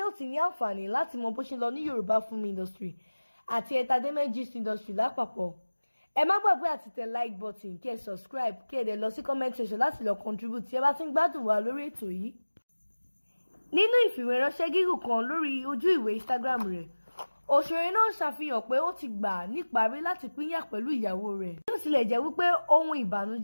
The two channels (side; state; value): both; inverted; correlation -1.00